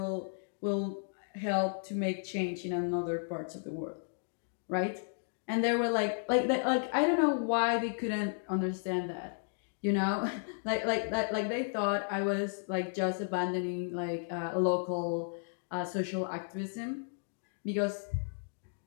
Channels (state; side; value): silent; right; digital silence